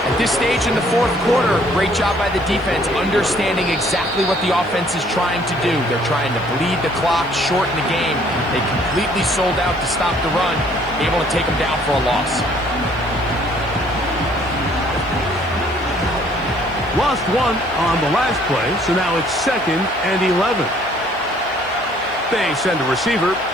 At this stage in the fourth quarter, great job by the defense, understanding exactly what the offense is trying to do. They're trying to bleed the clock, shorten the game. They completely sold out to stop the run, able to take them down for a loss. Lost one on the last play, so now it's 2nd and 11. They send a receiver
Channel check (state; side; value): noise; left; hiss, 30 dB below the sound